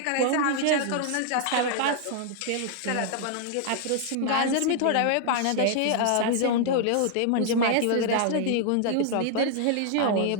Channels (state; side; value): different; both; correlation 0.00